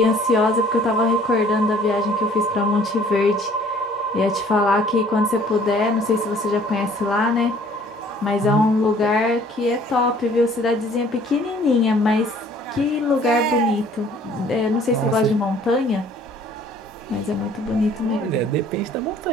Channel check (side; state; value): both; normal; correlation 0.56